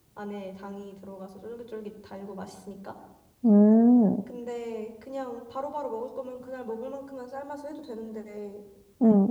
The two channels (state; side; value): identical; both; correlation 1.00